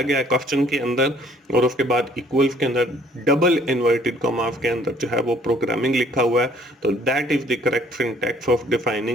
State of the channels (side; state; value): both; normal; correlation 0.59